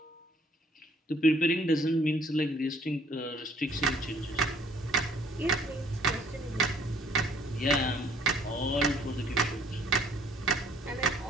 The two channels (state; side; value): normal; both; correlation 0.60